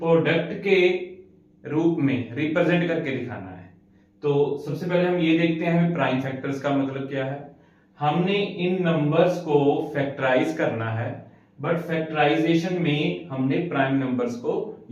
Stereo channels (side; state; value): both; identical; correlation 1.00